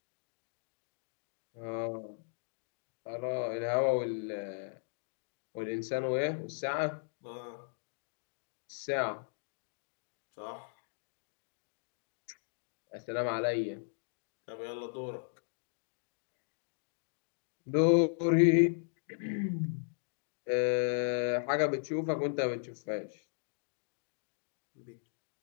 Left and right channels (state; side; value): silent; right; digital silence